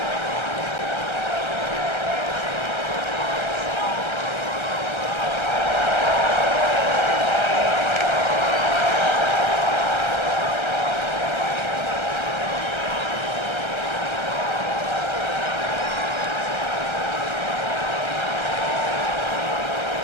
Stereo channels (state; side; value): late; right; 1.3 ms